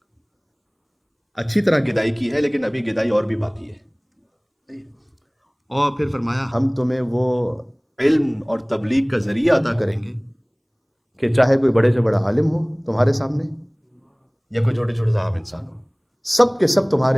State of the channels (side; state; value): both; identical; correlation 1.00